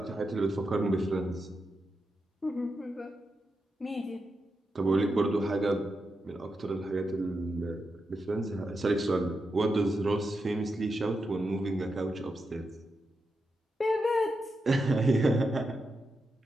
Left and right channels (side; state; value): both; normal; correlation 0.87